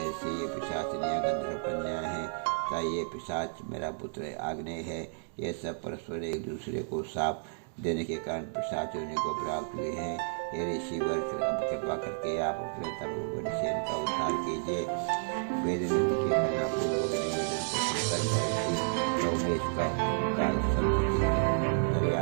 ये पिशाचिनियाँ गंधर्व कन्याएं हैं तथा ये पिशाच मेरा पुत्र आग्नेय है। ये सब परस्पर एक दूसरे को साप देने के कारण पिशाच योनि को प्राप्त हुए हैं। हे ऋषिवर, अब कृपा करके आप अपने तपोबल से इनका उद्धार कीजिए। वेदनिधि के करना पूर्वक निवेदन को सुनकर महर्षि लोमश का संत चित्त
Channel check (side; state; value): left; silent; digital silence